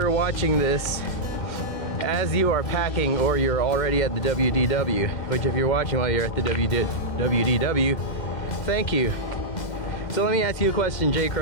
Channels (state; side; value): late; right; 2.0 ms